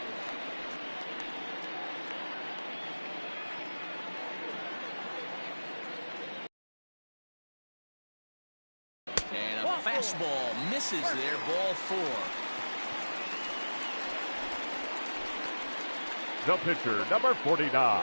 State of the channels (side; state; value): both; inverted; correlation -1.00